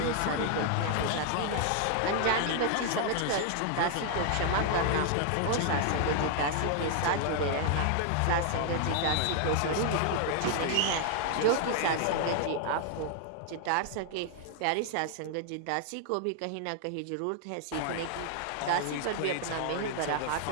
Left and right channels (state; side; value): different; both; correlation 0.00